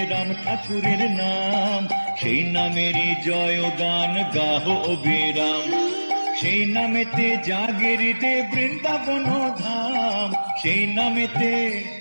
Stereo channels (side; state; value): both; inverted; correlation -1.00